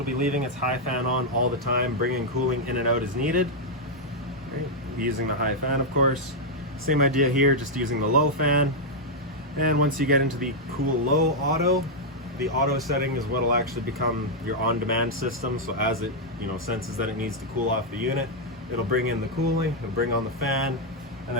be leaving its high fan on all the time, bringing cooling in and out as needed. Right? Using the high fan, of course. Same idea here, just using the low fan. And once you get into the cool low auto, the auto setting is what will actually become your on-demand system. So as it senses that it needs to cool off the unit, it'll bring in the cooling, it'll bring on the fan, and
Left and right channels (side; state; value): both; normal; correlation -0.02